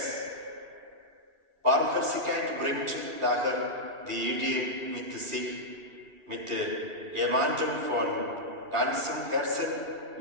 Barmherzigkeit bringt daher die Idee mit sich, mit jemandem von ganzem Herzen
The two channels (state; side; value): late; left; 2.4 ms